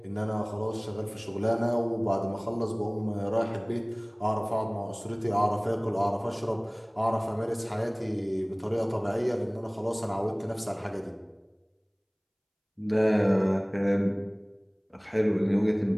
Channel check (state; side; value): identical; both; correlation 1.00